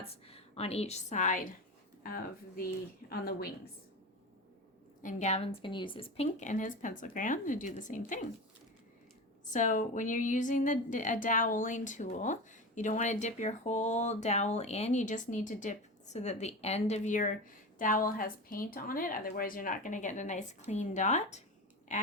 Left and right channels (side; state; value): both; normal; correlation 0.26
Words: on each side of on the wings. And Gavin's going to use his pink and his pencil crayon to do the same thing. So when you're using a doweling tool, you don't want to dip your whole dowel in. You just need to dip so that the end of your dowel has paint on it. Otherwise, you're not going to get a nice clean dot.